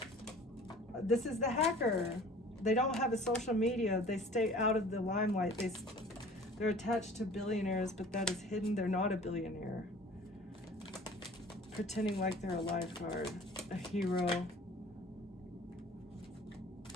This is the hacker. They don't have a social media. They stay out of the limelight. They're attached to billionaires, but that is hidden. They're not a billionaire. Pretending like they're a lifeguard, a hero.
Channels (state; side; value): normal; both; correlation 0.47